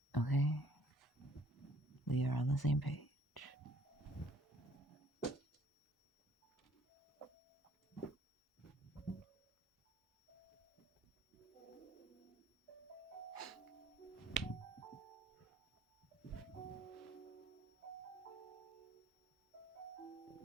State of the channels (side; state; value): both; normal; correlation 0.59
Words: Okay? We are on the same page.